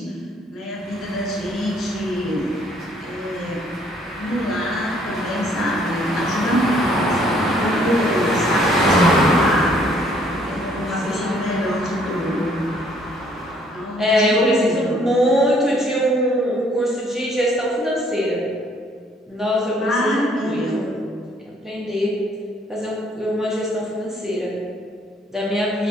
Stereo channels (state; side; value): normal; both; correlation 0.63